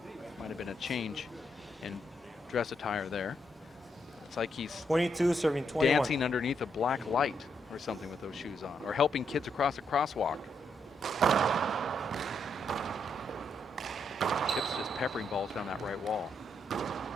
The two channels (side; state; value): both; normal; correlation 0.78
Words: Might have been a change in dress attire there. It's like he's 22 serving 21. dancing underneath a black light or something with those shoes on, or helping kids across a crosswalk. Chip's just peppering balls down that right wall.